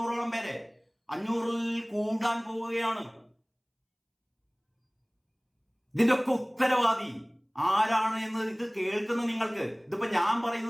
പേരെ, 500-ൽ കൂടാൻ പോവുകയാണ്. ഇതിന്റെ ഒക്കെ ഉത്തരവാദി ആരാണ് എന്ന് ഇത് കേൾക്കുന്ന നിങ്ങൾക്ക്, ഇതിപ്പോ ഞാൻ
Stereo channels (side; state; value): both; identical; correlation 1.00